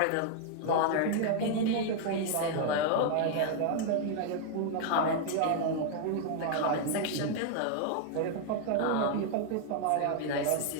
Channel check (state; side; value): different; both; correlation 0.00